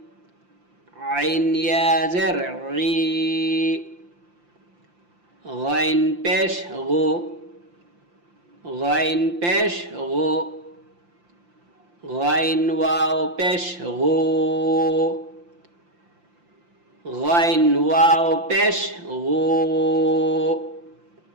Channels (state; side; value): late; left; 5.8 ms